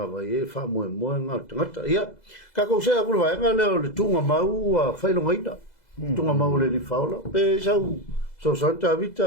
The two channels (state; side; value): late; right; 2.0 ms